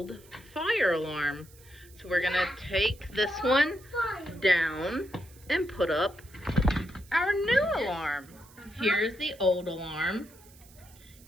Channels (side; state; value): right; noise; hiss, 24 dB below the sound